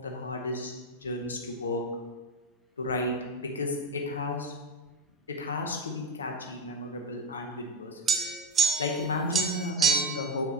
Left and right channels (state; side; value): normal; both; correlation 0.10